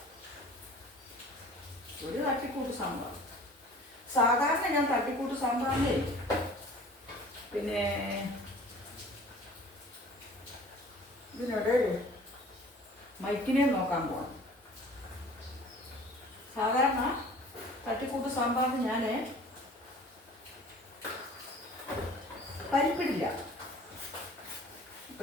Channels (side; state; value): both; normal; correlation 0.47